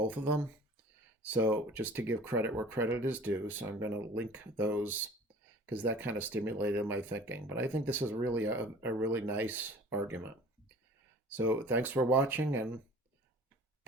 of them. So just to give credit where credit is due, so I'm going to link those because that kind of stimulated my thinking. But I think this is really a really nice argument. So thanks for watching, and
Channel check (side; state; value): both; normal; correlation 0.46